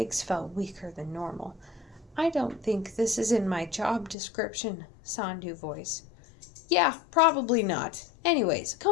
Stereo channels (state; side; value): drops out; right; at 4.2 s